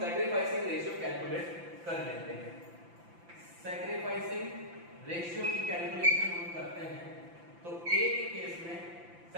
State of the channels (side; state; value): left; late; 5.9 ms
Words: सैक्रिफाइसिंग रेशियो कैलकुलेट कर लेते हैं. सैक्रिफाइसिंग रेशियो की कैलकुलेशन हम करते हैं तो ए के केस में